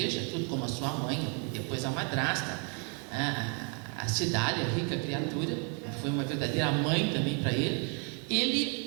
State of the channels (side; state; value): left; quieter; 37.9 dB